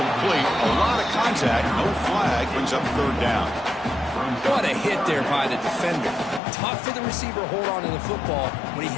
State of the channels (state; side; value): drops out; right; at 6.4 s